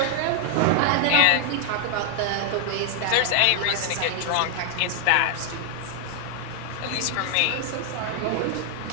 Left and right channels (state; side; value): different; both; correlation 0.00